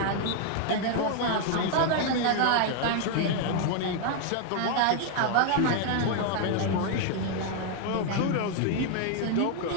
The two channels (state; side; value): different; both; correlation 0.00